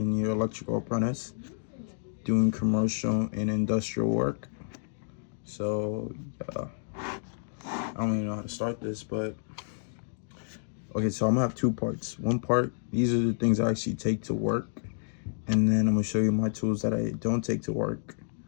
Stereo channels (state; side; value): silent; right; digital silence